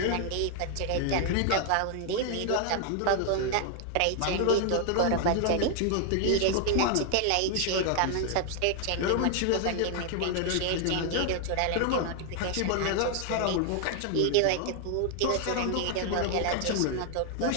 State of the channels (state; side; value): different; both; correlation 0.00